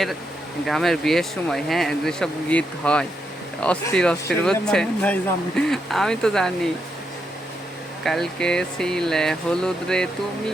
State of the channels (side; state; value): both; normal; correlation 0.81